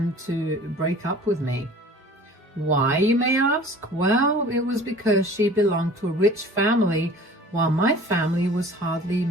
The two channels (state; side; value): normal; both; correlation 0.45